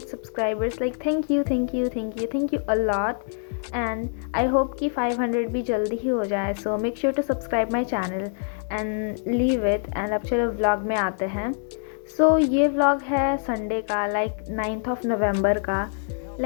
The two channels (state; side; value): silent; right; 62 dB below the other